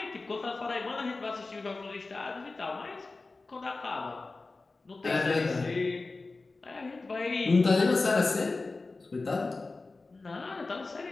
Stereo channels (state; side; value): quieter; right; 3.6 dB